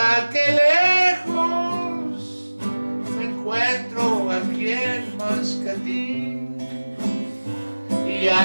que lejos me encuentro aquí en Mascatín. Y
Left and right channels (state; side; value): inverted; both; correlation -1.00